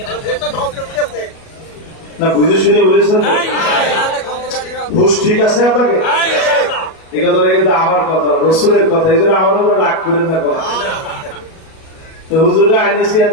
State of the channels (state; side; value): late; right; 37 ms